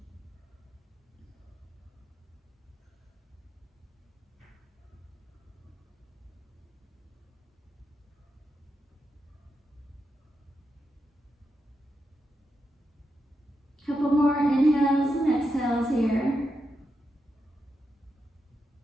Couple more inhales and exhales here.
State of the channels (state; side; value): normal; both; correlation 0.86